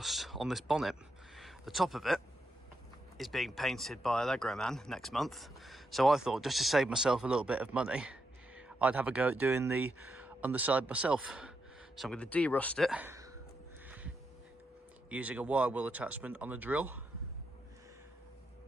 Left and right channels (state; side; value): normal; both; correlation 0.82